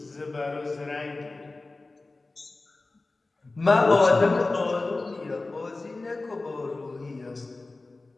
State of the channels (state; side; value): quieter; right; 3.3 dB